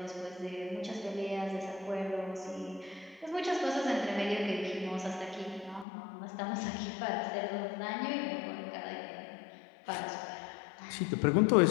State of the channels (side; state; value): right; drops out; at 5.9 s